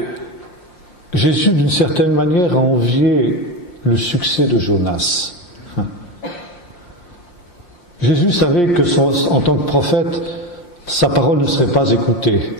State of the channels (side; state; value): right; late; 5.7 ms